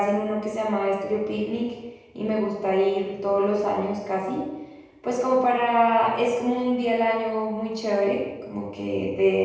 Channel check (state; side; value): identical; both; correlation 1.00